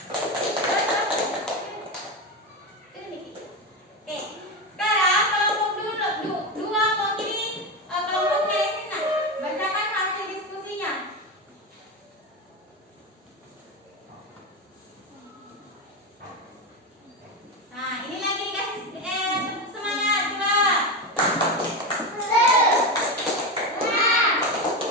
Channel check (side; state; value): both; normal; correlation 0.16